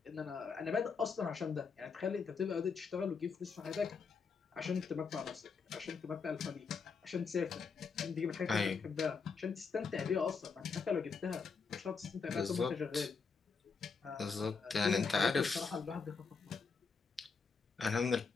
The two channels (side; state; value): right; quieter; 5.2 dB